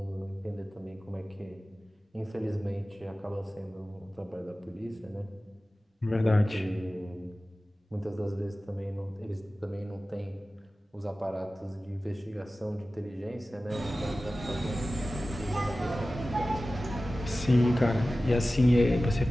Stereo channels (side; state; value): both; normal; correlation 0.96